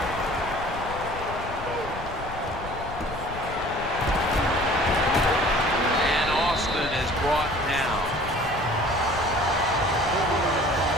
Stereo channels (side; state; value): left; noise; rumble, 11 dB below the sound